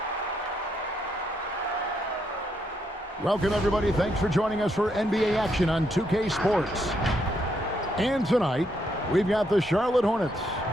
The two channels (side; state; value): both; normal; correlation 0.76